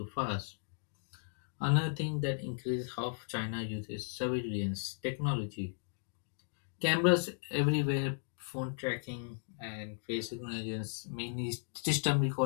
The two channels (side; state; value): right; silent; digital silence